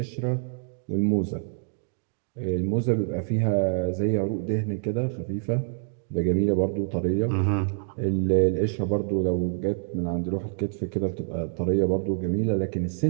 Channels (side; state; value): left; silent; digital silence